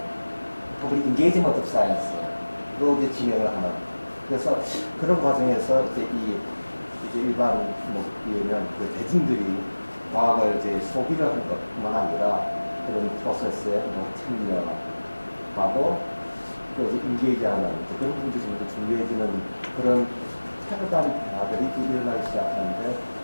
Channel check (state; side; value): inverted; both; correlation -1.00